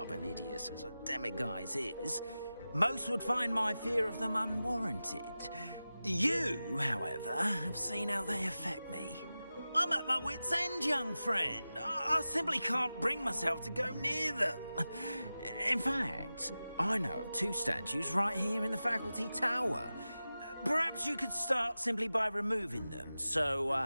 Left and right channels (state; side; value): inverted; both; correlation -0.95